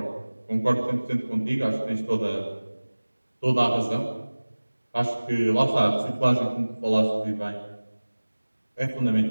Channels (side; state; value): both; inverted; correlation -1.00